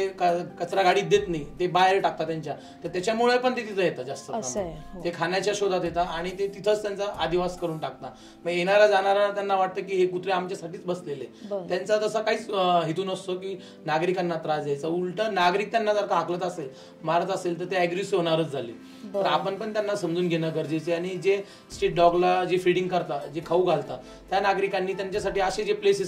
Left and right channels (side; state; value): both; identical; correlation 1.00